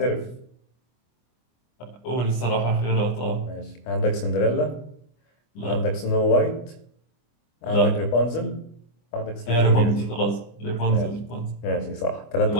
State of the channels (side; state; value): right; late; 25 ms